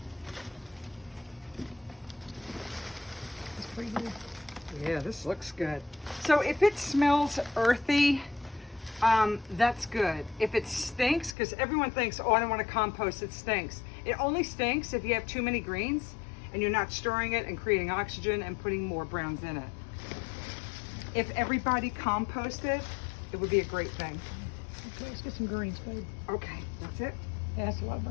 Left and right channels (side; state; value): right; drops out; at 11.4 s